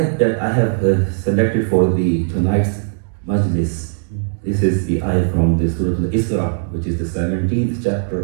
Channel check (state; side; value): silent; left; digital silence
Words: that I have selected for tonight's Majlis, this is the ayat from the Surah Al-Isra, which is the 17th